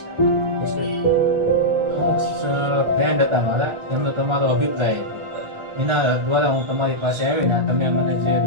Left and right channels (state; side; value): late; left; 1.4 ms